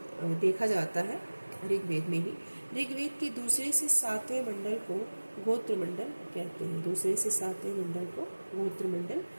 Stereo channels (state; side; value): inverted; both; correlation -1.00